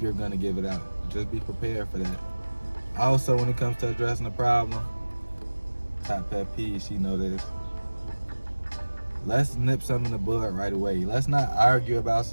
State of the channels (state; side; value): inverted; both; correlation -1.00